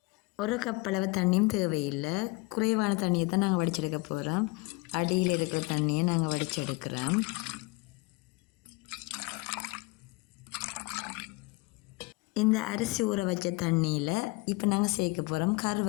ஒரு கப் அளவு தண்ணியும் தேவையில்லை, குறைவான தண்ணியை தான் நாங்கள் வடிச்செடுக்க போகிறோம். அடியில் இருக்கிற தண்ணியை நாங்கள் வடிச்செடுக்கிறோம். இந்த அரிசி ஊற வச்ச தண்ணியில் இப்போ நாங்கள் சேர்க்க போகிறோம்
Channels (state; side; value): quieter; right; 24.4 dB